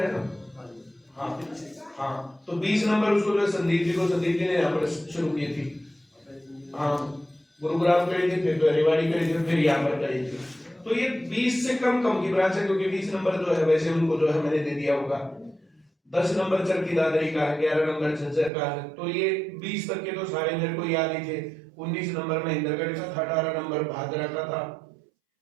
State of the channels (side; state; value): left; drops out; at 18.5 s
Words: है ना? हाँ, तो 20 नंबर उसको जो संदीप जी ने यहाँ पर शुरू की थी। हाँ, गुरुग्राम करी थी, फिर तो रेवाड़ी करी थी, फिर यहाँ पर करी थी। तो ये 20 से कम की ब्रांच है, क्योंकि 20 नंबर जो है वैसे उनको जो है मैंने दे दिया होगा। 10 नंबर चरखी दादरी का है, 11 नंबर झज्जर का है। तो ये 20 तक के तो सारे मेरे को याद ही थे। 19 नंबर महेंद्रगढ़ का था, 18 नंबर भादरा का था,